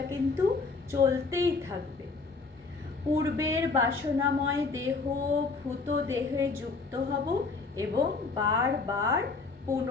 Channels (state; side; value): quieter; right; 4.2 dB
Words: কিন্তু চলতেই থাকবে। পূর্বের বাসনাময় দেহ ভূত দেহে যুক্ত হব, এবং বারবার